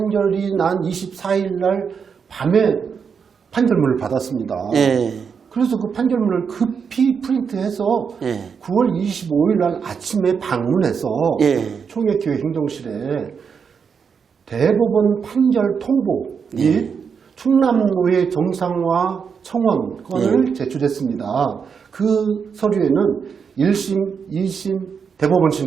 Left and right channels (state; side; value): quieter; left; 6.3 dB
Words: 난 24일 날 밤에 판결문을 받았습니다. 예. 그래서 그 판결문을 급히 프린트해서 예. 9월 25일 날 아침에 방문해서 예. 총회교회 행정실에 대법원 판결 통보 및 충남노회 정상화 청원권을 제출했습니다. 그 서류에는 1심, 2심,